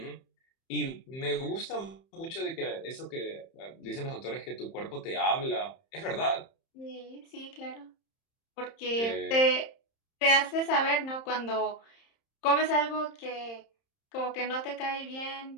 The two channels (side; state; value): right; late; 30 ms